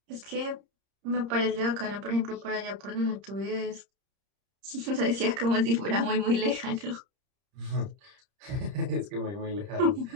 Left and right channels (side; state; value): left; late; 30 ms